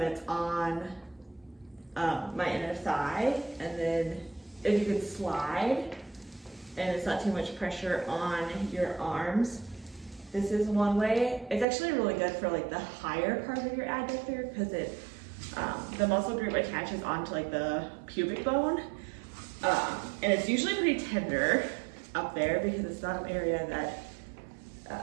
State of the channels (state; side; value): drops out; left; at 11.7 s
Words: it's on my inner thigh, and then if you can slide and it's not too much pressure on your arms, this is one way. It's actually really good for like the higher part of your adductor because it the muscle group attaches onto like the pubic bone, and it's usually pretty tender up there because it's not an area